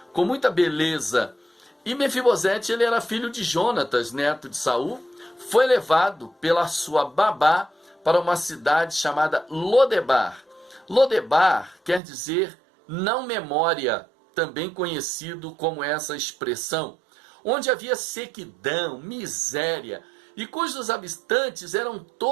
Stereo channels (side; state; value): left; drops out; at 12.0 s